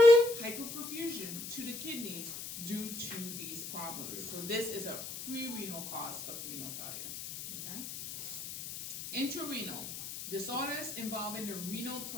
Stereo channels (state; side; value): noise; left; hiss, 8 dB below the sound